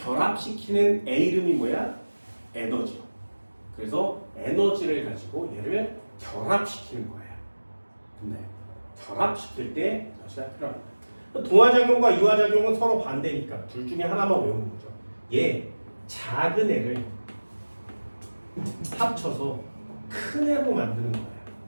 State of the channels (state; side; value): inverted; both; correlation -1.00